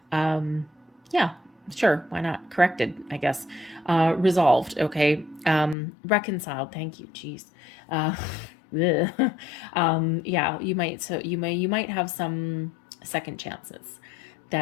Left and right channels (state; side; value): drops out; right; at 5.8 s